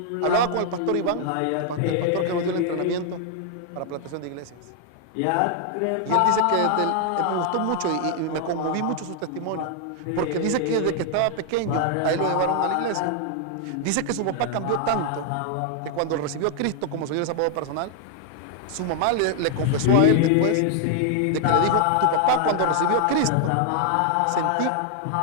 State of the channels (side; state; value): both; different; correlation 0.00